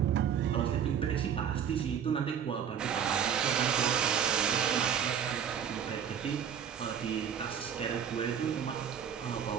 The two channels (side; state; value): left; quieter; 8.2 dB